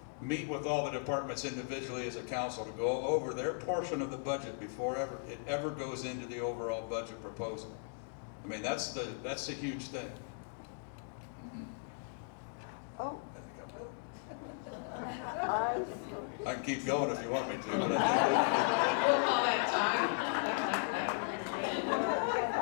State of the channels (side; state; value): right; silent; digital silence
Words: Meet with all the departments individually as a council to go over their portion of the budget before it ever goes into the overall budget proposal. I mean, that's the huge thing. Oh. I can keep going if you want me to. But We'll call that